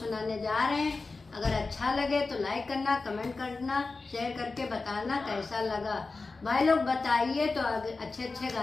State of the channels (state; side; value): quieter; right; 3.9 dB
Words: जा रहे हैं। अगर अच्छा लगे तो लाइक करना, कमेंट करना, शेयर करके बताना कैसा लगा। भाई लोग बताइए तो अच्छे अच्छे